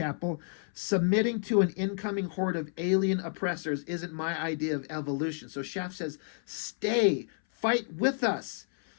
Submitting to an incoming horde of alien oppressors isn't my idea of evolution. So Shaft says, stay, fight with us.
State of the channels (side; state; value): right; silent; 57 dB below the other